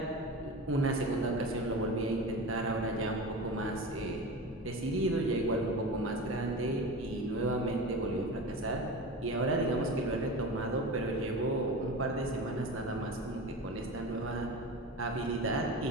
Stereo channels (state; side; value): normal; both; correlation 0.29